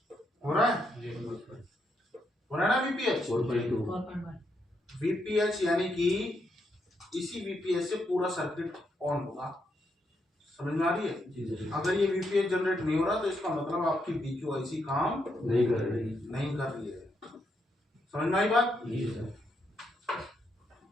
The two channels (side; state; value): both; normal; correlation 0.79